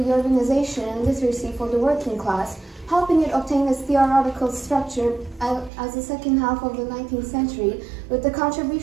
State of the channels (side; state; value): left; drops out; at 5.7 s